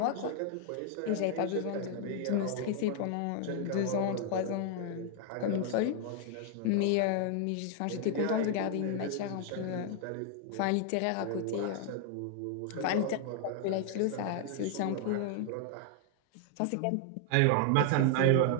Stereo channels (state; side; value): different; both; correlation 0.00